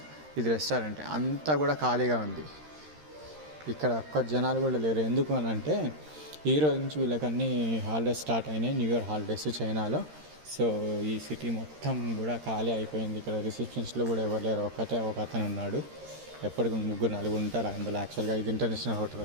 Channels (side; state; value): left; late; 13 ms